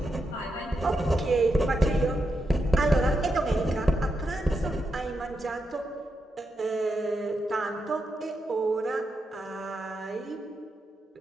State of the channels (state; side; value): normal; both; correlation 0.85